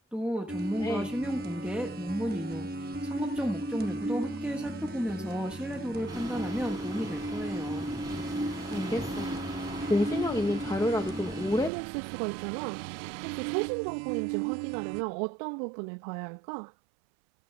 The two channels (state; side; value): drops out; left; at 11.7 s